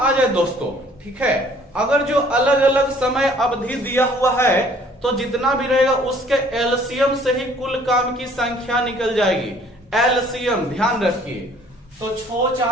जाए दोस्तों, ठीक है, अगर जो अलग अलग समय अवधि दिया हुआ है तो जितना भी रहेगा उसके एलसीएम से ही कुल काम की संख्या निकल जाएगी। एलसीएम ध्यान रखिए। तो 6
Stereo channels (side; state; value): both; normal; correlation 0.57